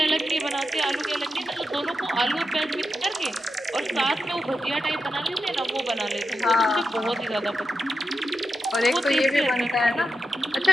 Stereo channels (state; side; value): normal; both; correlation 0.89